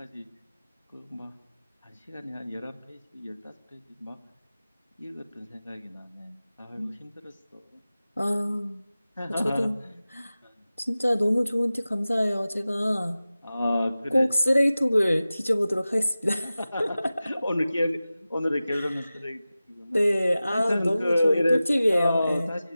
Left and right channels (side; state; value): both; inverted; correlation -0.96